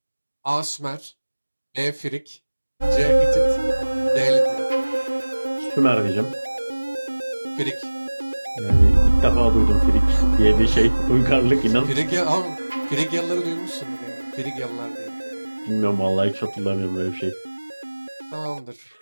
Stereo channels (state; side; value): inverted; both; correlation -1.00